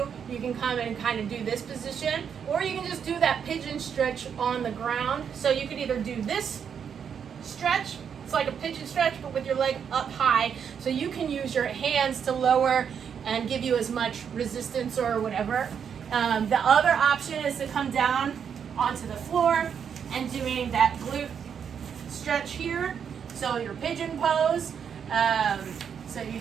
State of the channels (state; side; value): quieter; left; 7.5 dB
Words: you can come and kind of do this position, or you can just do that pigeon stretch on the ground. So you could either do this stretch, it's like a pigeon stretch, but with your leg up high, so you can use your hands to lower and give you as much resistance or whatever. The other option is to come down onto the floor and doing that glute stretch here. So your pigeon pose, so you